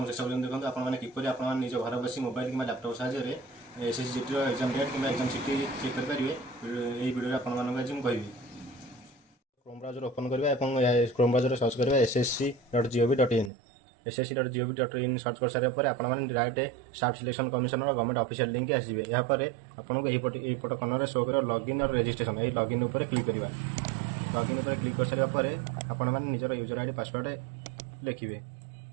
शेष पर्यटन देखो आपने किपर आप निज घर बस मोबाइल कि लैपटॉप साहाय्य एसएससी जीटी एग्जाम डेट कि एग्जाम सीटी चेक करेंगे। यही वीडियो आपको आज मुझे कहबी। क्रोम ब्राउजर ओपन करवा क्रोम ब्राउजर सर्च करवा ssc.gov.in ssc.gov.in सर्च कर सारे आपने डायरेक्ट स्टाफ सिलेक्शन कमिशन और गवर्नमेंट ऑफिशियल लिंक आसवे। यापर आपको यहीपट कर्नर शो कर लॉगिन और रजिस्ट्रेशन यही लॉगिन उपर क्लिक करवा। लॉगिन उपर क्लिक कर सारे आपण मैंने निजर यूजर आईडी पासवर्ड लिखिए।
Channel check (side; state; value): left; drops out; at 13.5 s